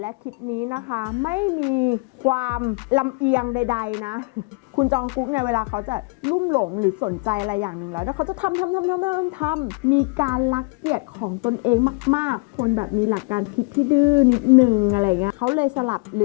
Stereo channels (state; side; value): quieter; right; 30.0 dB